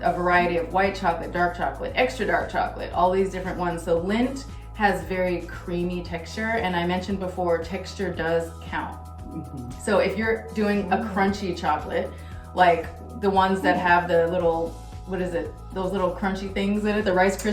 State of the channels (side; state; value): both; identical; correlation 1.00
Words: a variety of white chocolate, dark chocolate, extra dark chocolate, all these different ones. So Lindt has very creamy texture, and I mentioned before, texture does count. So if you're doing a crunchy chocolate, like the ones that have the little, those little crunchy things in it, the Rice